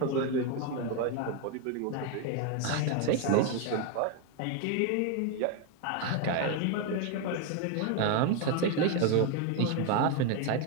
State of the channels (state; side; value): different; both; correlation 0.01